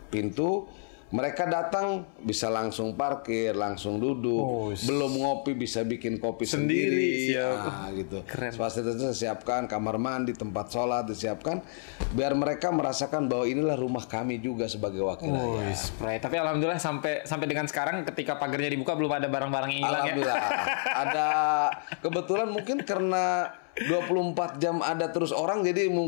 pintu. Mereka datang bisa langsung parkir, langsung duduk, belum ngopi bisa bikin kopi sendiri. Nah, gitu. Fasilitasnya disiapkan, kamar mandi, tempat sholat disiapkan, biar mereka merasakan bahwa inilah rumah kami juga sebagai wakil rakyat. Tapi alhamdulillah sampai dengan sekarang ketika pagarnya dibuka belum ada barang-barang yang hilang. Alhamdulillah. Ada kebetulan mungkin karena 24 jam ada terus orang, jadi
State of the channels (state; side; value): silent; right; 58 dB below the other